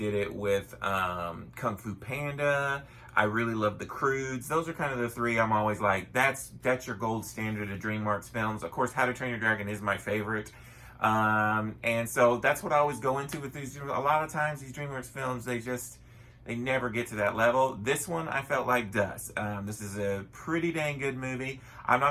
it with Kung Fu Panda. I really love the Croods. Those are kind of the three I'm always like, that's your gold standard of DreamWorks films. Of course, How to Train Your Dragon is my favorite. And so that's what I always go into with these. A lot of times these DreamWorks films, they never get to that level. This one I felt like does. This is a pretty dang good movie. I'm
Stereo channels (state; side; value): identical; both; correlation 1.00